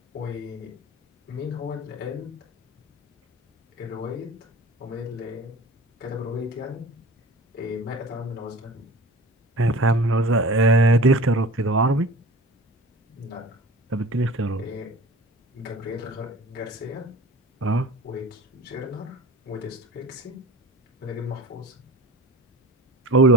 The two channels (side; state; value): both; normal; correlation 0.39